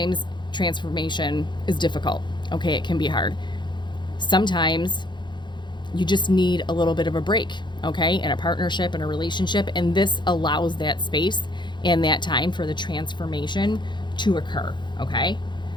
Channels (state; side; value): late; right; 0.22 ms